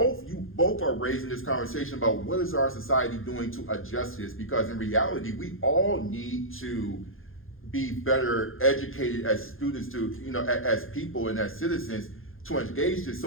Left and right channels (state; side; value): late; right; 0.60 ms